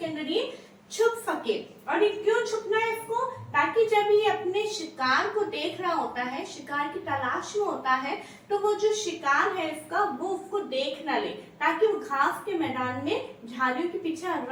अंदर ये छुप सके। और ये क्यों छुपना है इसको, ताकि जब ये अपने शिकार को देख रहा होता है, शिकार की तलाश में होता है, तो वो जो शिकार है इसका, वो उसको देख ना ले, ताकि वो घास के मैदान में झाड़ियों के पीछे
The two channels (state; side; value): identical; both; correlation 1.00